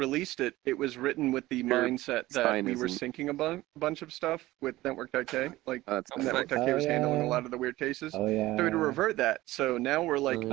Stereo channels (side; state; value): left; quieter; 17.5 dB